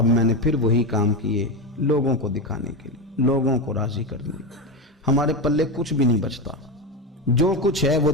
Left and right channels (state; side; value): normal; both; correlation 0.16